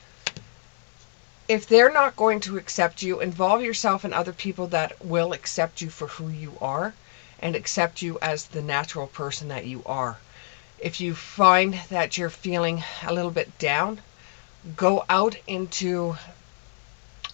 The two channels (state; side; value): silent; right; 61 dB below the other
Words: If they're not going to accept you, involve yourself in other people that will accept you for who you are and accept you as the natural person that you are. If you find that you're feeling a little bit down, go out into